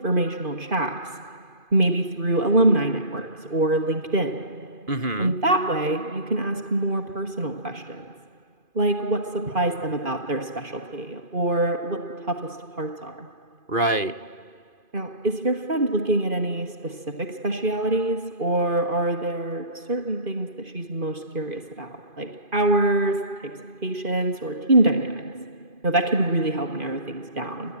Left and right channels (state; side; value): late; left; 2.5 ms